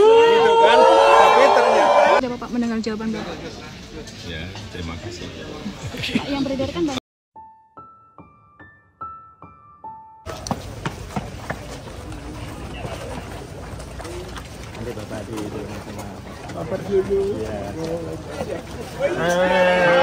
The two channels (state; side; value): identical; both; correlation 1.00